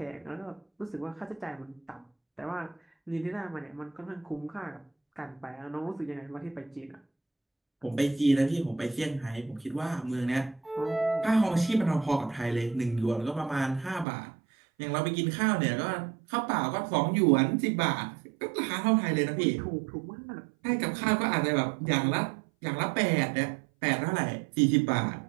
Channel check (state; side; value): drops out; left; at 14.1 s